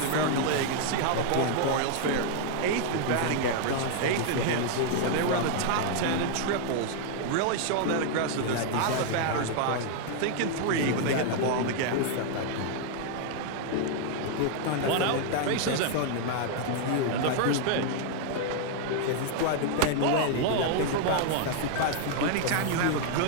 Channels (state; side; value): different; both; correlation 0.00